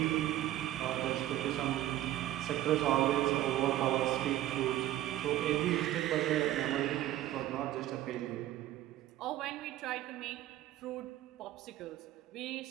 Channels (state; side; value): quieter; left; 13.9 dB